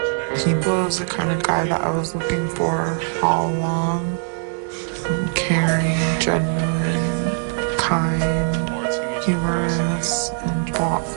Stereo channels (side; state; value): left; silent; 58 dB below the other